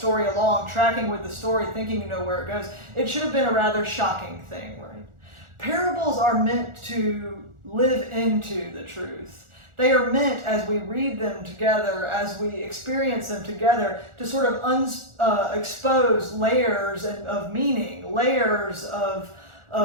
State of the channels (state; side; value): late; left; 1.4 ms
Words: along, tracking with the story, thinking you know where it goes. It should have been a rather shocking thing, right? Parables are meant to live into the truth. They are meant, as we read them together, as we experience them together, to sort of expose layers of meaning, layers of